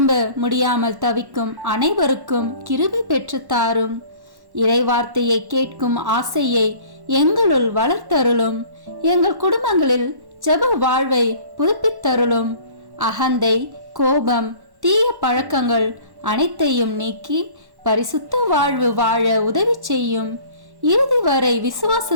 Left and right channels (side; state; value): left; late; 1.1 ms